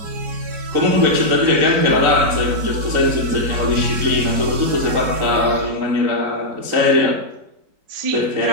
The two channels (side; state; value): left; late; 4.9 ms